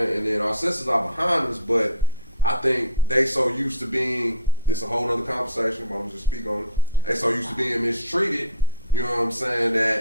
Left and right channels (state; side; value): inverted; both; correlation -0.39